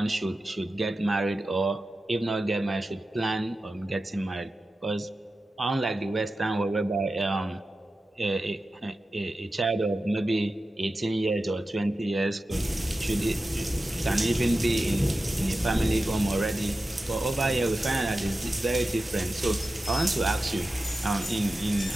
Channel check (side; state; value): both; normal; correlation 0.93